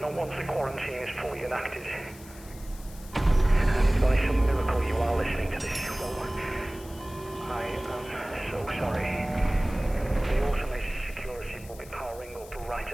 Not once the quarantine is fully enacted. And if by some miracle you are listening to this, well, I am so sorry. The automated security will be powering up right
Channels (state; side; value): noise; left; hiss, 20 dB below the sound